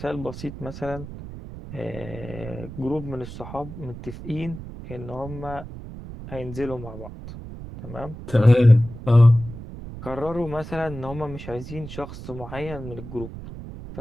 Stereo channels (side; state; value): right; noise; rumble, 12 dB below the sound